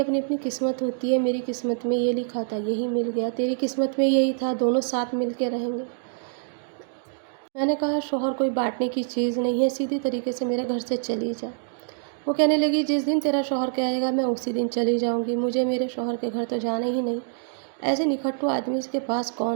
اپنی اپنی قسمت ہوتی ہے، میری قسمت میں یہ لکھا تھا یہی مل گیا، تیری قسمت میں یہی تھا دونوں ساتھ مل کے رہیں گے۔ میں نے کہا شوہر کوئی بانٹنے کی چیز نہیں ہے، سیدھی طریقے سے میرے گھر سے چلی جا۔ وہ کہنے لگی جس دن تیرا شوہر کہے گا میں اسی دن چلی جاؤں گی، مجھے میرے شوہر کے گھر تو جانا ہی نہیں، ایسے نکھٹو آدمی اس کے پاس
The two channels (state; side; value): silent; left; digital silence